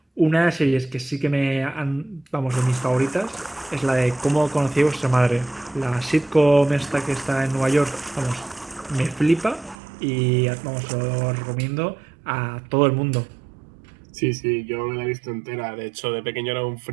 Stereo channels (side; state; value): left; drops out; at 9.8 s